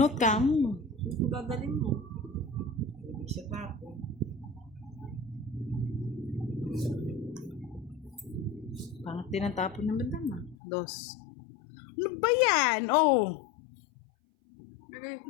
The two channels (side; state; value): right; drops out; at 10.6 s